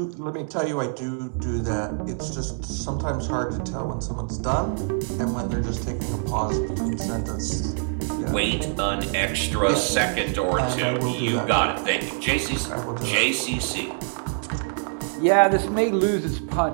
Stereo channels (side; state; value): left; silent; digital silence